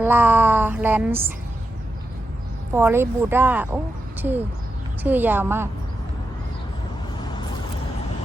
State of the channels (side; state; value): both; normal; correlation 0.88